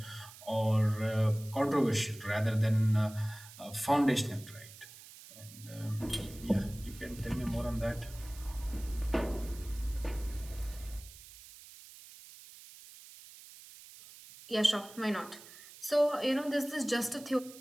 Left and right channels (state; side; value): noise; right; hiss, 18 dB below the sound